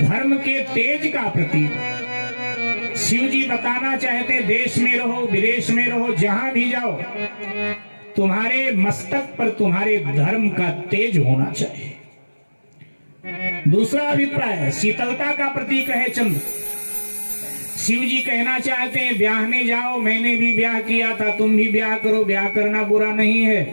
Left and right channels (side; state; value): both; inverted; correlation -1.00